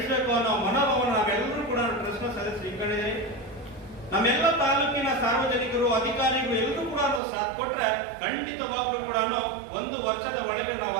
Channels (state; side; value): drops out; left; at 7.2 s